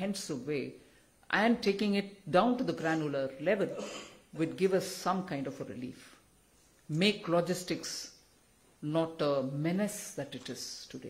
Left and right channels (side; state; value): both; identical; correlation 1.00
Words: way and taking it down to the granular level, would give us some kind of a relief. Make logistics not a menace that it is